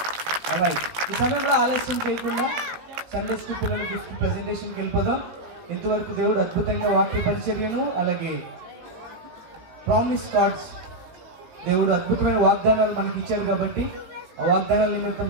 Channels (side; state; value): left; late; 18 ms